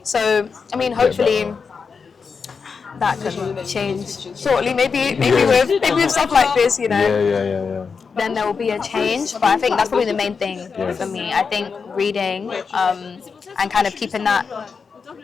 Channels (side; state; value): right; quieter; 5.4 dB